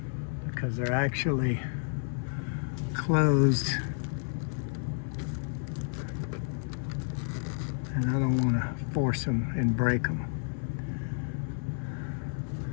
because they're actually closed and I don't want to force them and break them.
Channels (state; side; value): silent; right; 57 dB below the other